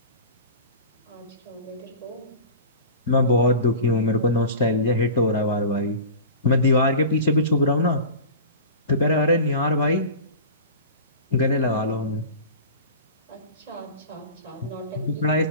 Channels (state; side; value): inverted; both; correlation -0.33